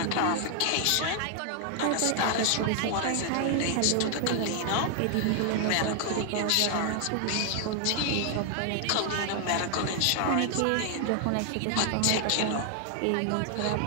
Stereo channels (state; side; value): different; both; correlation 0.00